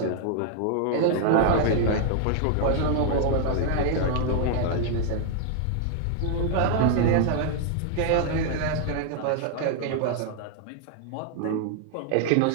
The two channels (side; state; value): both; different; correlation -0.01